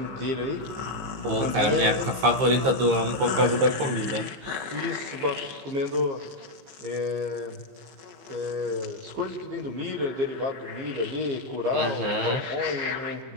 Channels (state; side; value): late; left; 15 ms